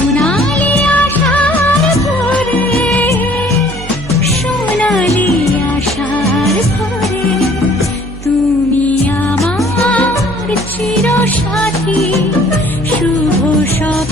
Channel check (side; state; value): right; noise; hum, 12 dB below the sound